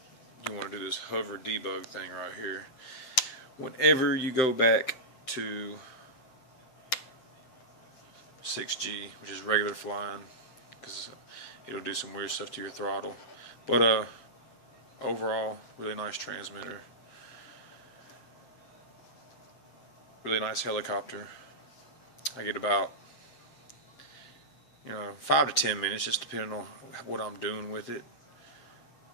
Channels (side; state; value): right; late; 7.7 ms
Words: do this hover debug thing right here. Whenever you go back to 6G, which is regular flying, because it'll do some weird stuff to your throttle. But overall, really nice transmitter. Really nice helicopter. I get about 5 to 10 minutes, just depending on what I'm doing with it.